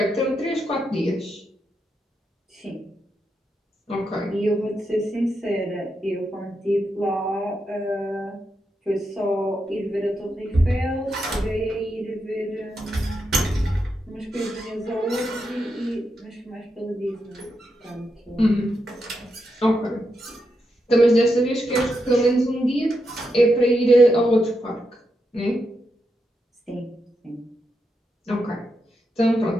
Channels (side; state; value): both; normal; correlation 0.84